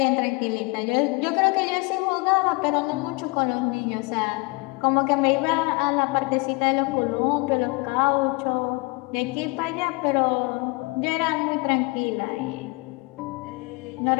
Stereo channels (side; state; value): right; quieter; 27.5 dB